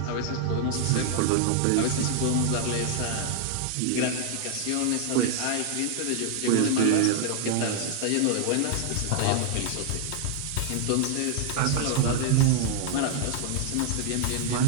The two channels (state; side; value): different; both; correlation 0.00